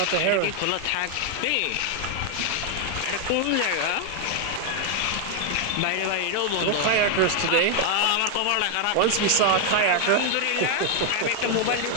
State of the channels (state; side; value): different; both; correlation 0.00